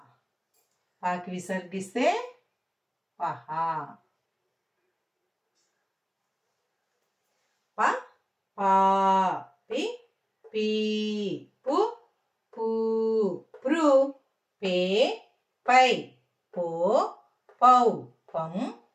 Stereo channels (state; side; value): identical; both; correlation 1.00